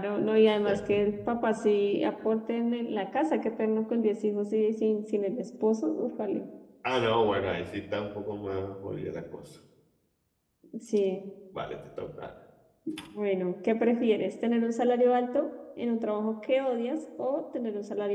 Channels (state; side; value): identical; both; correlation 1.00